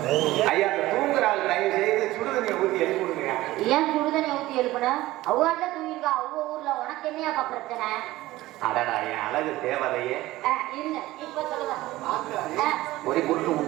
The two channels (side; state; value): left; quieter; 17.2 dB